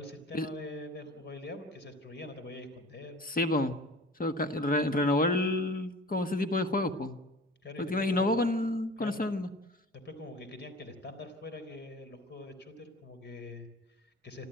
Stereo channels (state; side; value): normal; both; correlation 0.41